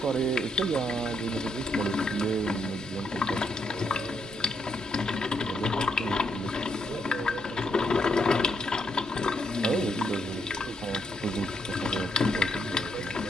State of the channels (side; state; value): both; normal; correlation 0.76